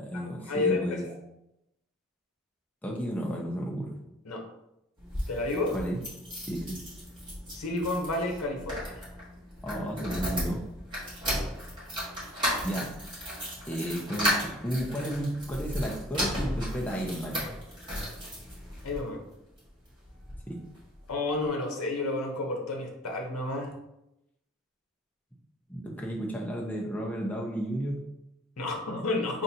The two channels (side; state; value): both; normal; correlation 0.49